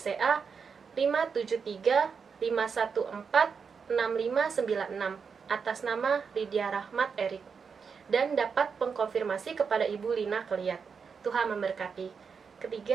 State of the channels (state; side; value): quieter; left; 5.9 dB